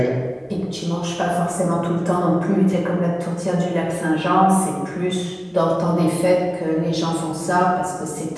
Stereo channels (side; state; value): both; identical; correlation 1.00